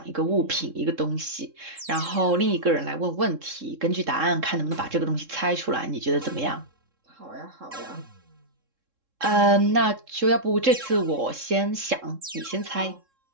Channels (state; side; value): late; left; 3.7 ms